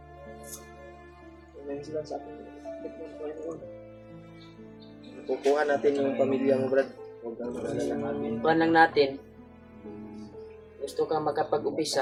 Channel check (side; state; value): both; identical; correlation 1.00